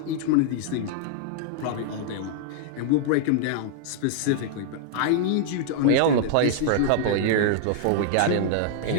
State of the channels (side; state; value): both; different; correlation -0.01